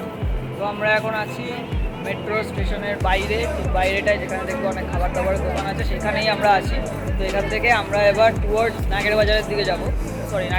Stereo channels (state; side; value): identical; both; correlation 1.00